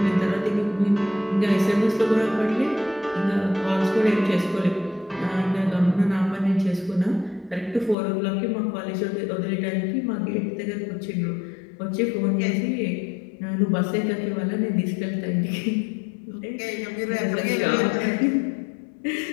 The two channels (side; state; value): right; drops out; at 8.0 s